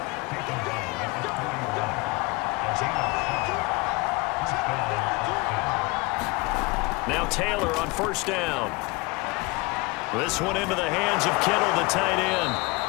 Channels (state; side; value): quieter; right; 25.5 dB